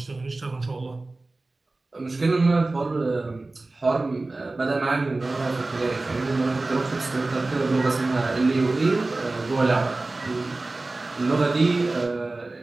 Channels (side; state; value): left; quieter; 3.2 dB